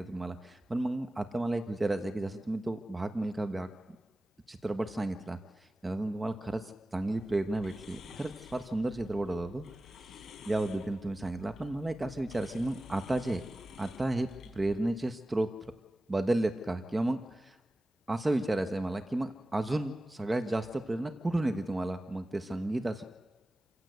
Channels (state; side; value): normal; both; correlation 0.95